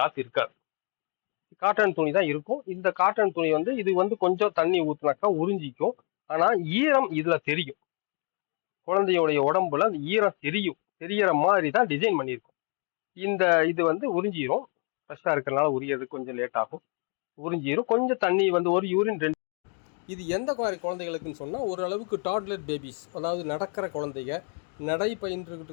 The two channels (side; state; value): right; quieter; 37.7 dB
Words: இருக்காது, காட்டன் துணி தான் இருக்கும். இந்த காட்டன் துணி வந்து இது வந்து கொஞ்சம் தண்ணி ஊற்றினாக்கா உறிஞ்சிக்கும். ஆனால் ஈரம் இதில் தெரியும். குழந்தையோடைய உடம்புல அந்த ஈரம் தெரியற மாதிரி தான் டிசைன் பண்ணியிருக்கும். இது வந்து உறிஞ்சிரும். ஃப்ரெஷ்ஷாக இருக்கிறனால உரியது கொஞ்சம் லேட் ஆகும். உறிஞ்சிரும். கொஞ்சம் தண்ணி வந்து ஒரு யூரின் 2. இது எந்த மாதிரி குழந்தைகளுக்குன்னு சொன்னால், ஓரளவுக்கு டாட்லர் பேபிஸ், அதாவது நடக்கிற குழந்தைங்க, நடை பயின்றுக்கிட்டு